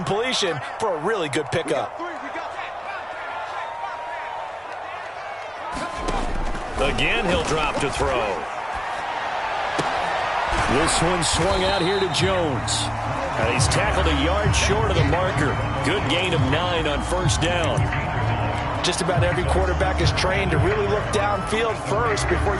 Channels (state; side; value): identical; both; correlation 1.00